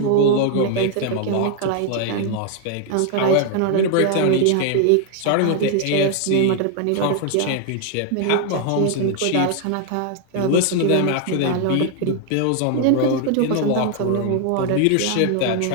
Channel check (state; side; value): different; both; correlation 0.00